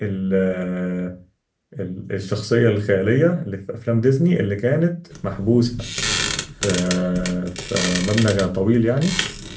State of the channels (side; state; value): both; identical; correlation 1.00